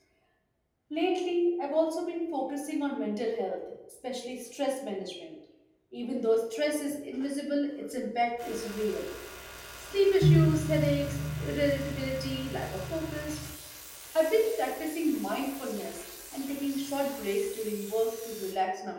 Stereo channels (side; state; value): both; identical; correlation 1.00